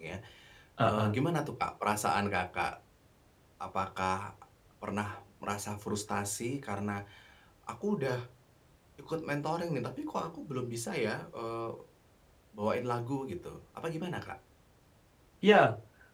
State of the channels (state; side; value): identical; both; correlation 1.00